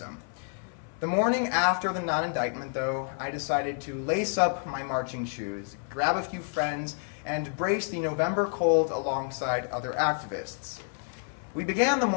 The morning after the non-indictment, though, I decided to lace up my marching shoes, grab a few friends, and brace the November cold alongside other activists. We began the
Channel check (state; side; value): silent; right; 57 dB below the other